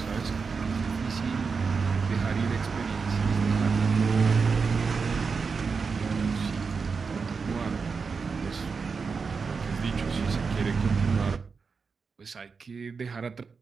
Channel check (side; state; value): left; quieter; 5.1 dB